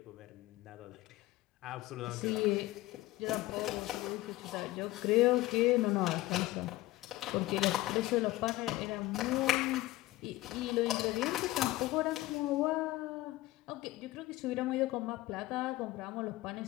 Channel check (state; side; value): quieter; right; 17.7 dB